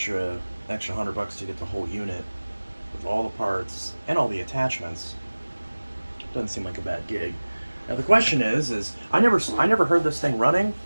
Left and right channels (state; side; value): inverted; both; correlation -1.00